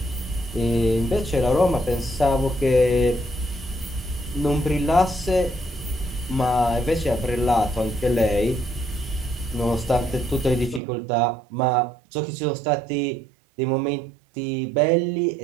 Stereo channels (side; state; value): left; drops out; at 10.8 s